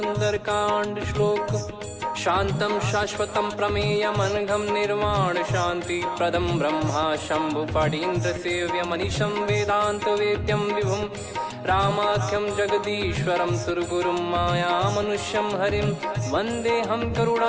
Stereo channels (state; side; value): identical; both; correlation 1.00